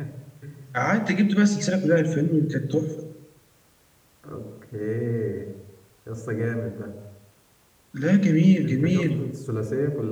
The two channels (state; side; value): identical; both; correlation 1.00